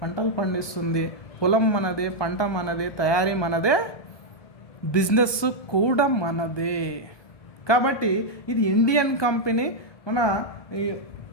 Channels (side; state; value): right; late; 1.2 ms